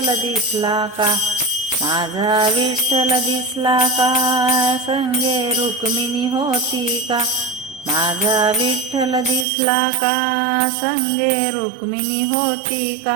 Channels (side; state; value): left; drops out; at 9.5 s